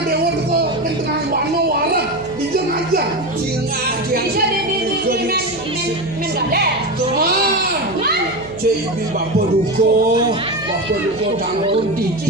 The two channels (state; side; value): noise; right; hum, 19 dB below the sound